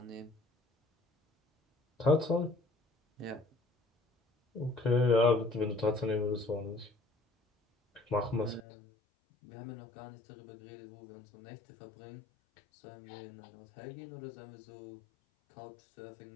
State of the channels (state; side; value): drops out; right; at 8.7 s